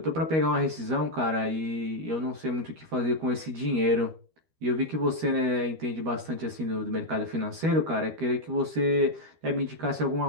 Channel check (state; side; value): late; left; 13 ms